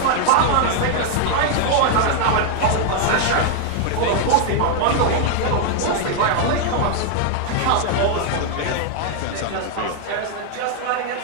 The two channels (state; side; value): different; both; correlation 0.00